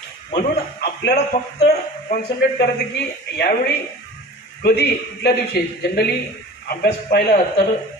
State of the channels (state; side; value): normal; both; correlation 0.39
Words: म्हणून आपल्याला फक्त कॉन्सन्ट्रेट करायचं की यावेळी कधी कुठल्या दिवशी. जनरली अभ्यास पाहिला तर